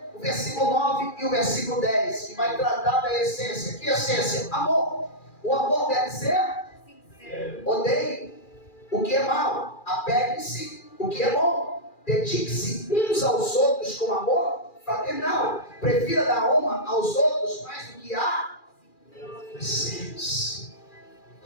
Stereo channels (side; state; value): right; late; 2.4 ms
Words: o versículo 9 e o versículo 10, que vai tratar da essência. Que essência? Amor. O amor deve ser sincero. Odeie o que é mal, apegue-se o que é bom, dedique-se uns aos outros com amor fraternal, prefira dar honra aos outros mais do que a vocês.